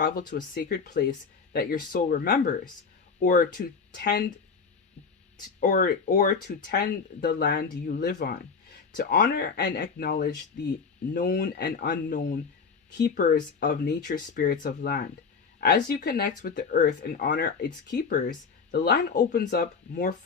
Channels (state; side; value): quieter; right; 5.3 dB